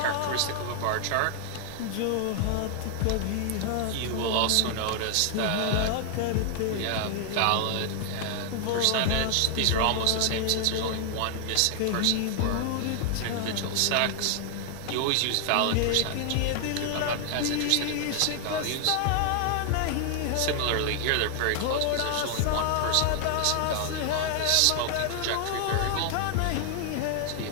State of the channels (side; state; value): both; different; correlation 0.00